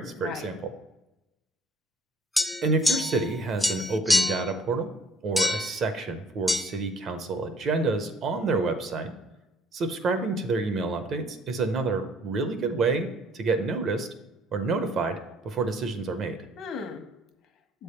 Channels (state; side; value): normal; both; correlation 0.58